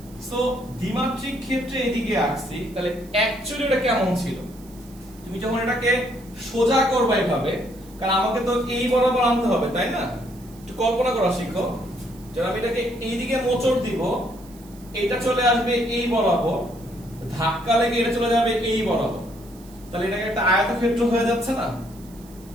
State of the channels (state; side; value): noise; right; hiss, 24 dB below the sound